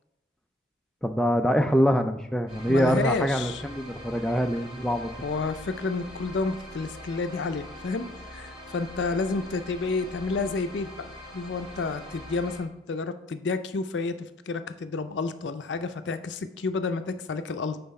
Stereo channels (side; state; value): both; normal; correlation 0.64